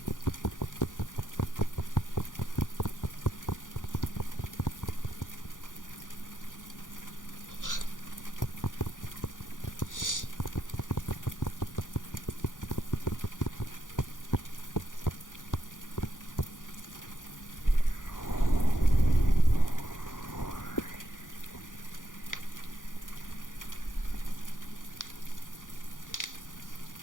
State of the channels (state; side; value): late; right; 0.88 ms